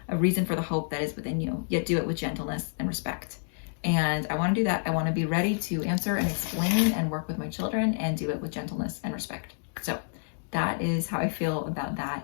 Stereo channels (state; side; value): silent; right; digital silence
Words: a reason for the hope that is within you, yet do it with gentleness and respect." And I want to do that. I want to be ready to answer and explain and work with my children and do it with gentleness and respect. So that is how I feel about